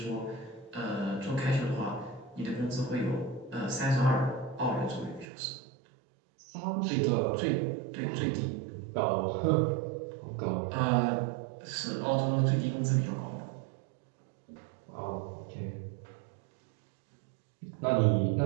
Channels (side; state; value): left; drops out; at 5.2 s